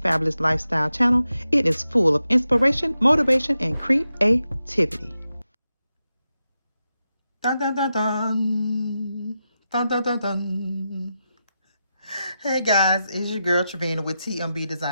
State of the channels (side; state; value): both; inverted; correlation -0.89